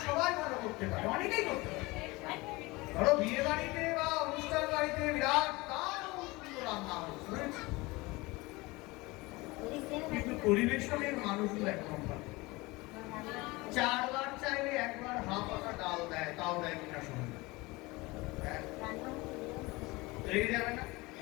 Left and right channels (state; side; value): quieter; right; 22.8 dB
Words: সবাই ভালো করতে পারে, অনেকেই করতে পারে। ধরো বিয়ে বাড়িতে বা অনুষ্ঠান বাড়িতে বিরাট সুন্দর রান্না হয়েছে, কিন্তু পরিবেশনের মানুষগুলো একদম ভালো। 4 বার চাইলে 1 বার হাফ পাতা ডাল দেয়, তাও দেয় কিনা শুনুন, রেগে যাবে না?